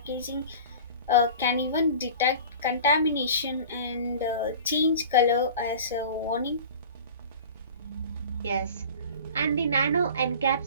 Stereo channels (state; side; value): inverted; both; correlation -0.39